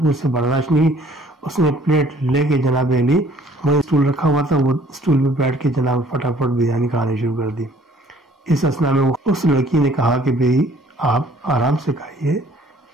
سے برداشت نہیں. اس نے پلیٹ لے کے جناب علی وہاں اسٹول رکھا ہوا تھا وہ اسٹول پہ بیٹھ کے جناب فٹافٹ بریانی کھانے شروع کر دی. اس اسنا میں اس لڑکی نے کہا کہ بھئی آپ آرام سے کھائیے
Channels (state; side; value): normal; both; correlation 0.57